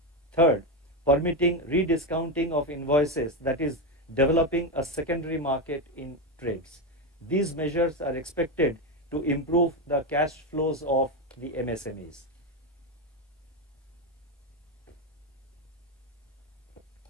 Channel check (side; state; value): both; normal; correlation 0.11